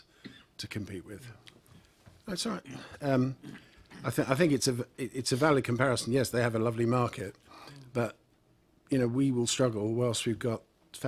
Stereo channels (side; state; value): both; identical; correlation 1.00